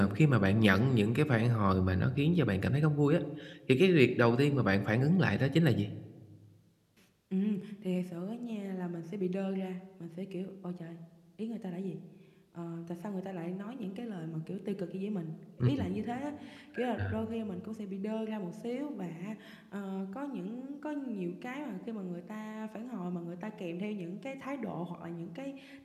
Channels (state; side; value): identical; both; correlation 1.00